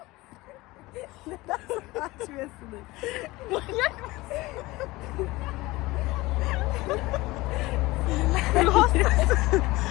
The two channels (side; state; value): right; quieter; 20.4 dB